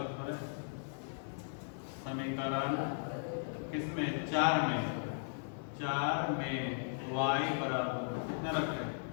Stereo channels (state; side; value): silent; right; 53 dB below the other